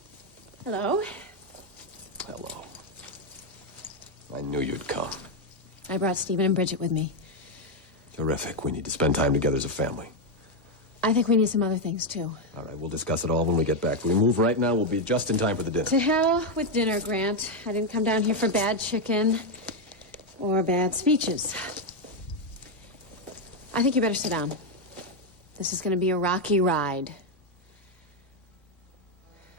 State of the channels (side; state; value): both; normal; correlation 0.04